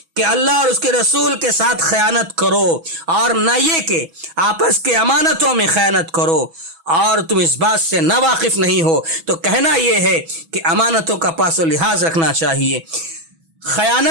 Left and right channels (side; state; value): left; late; 6.1 ms